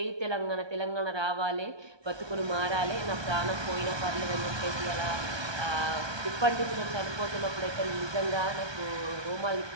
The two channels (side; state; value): left; late; 1.2 ms